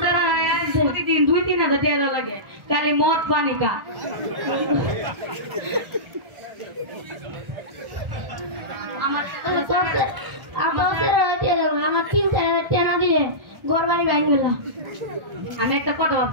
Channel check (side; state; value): left; late; 1.4 ms